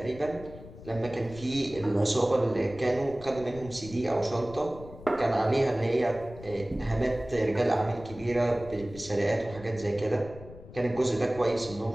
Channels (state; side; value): noise; left; rumble, 16 dB below the sound